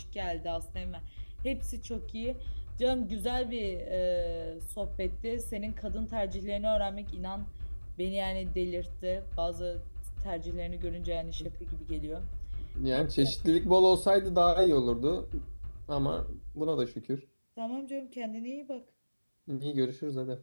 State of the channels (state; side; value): inverted; both; correlation -1.00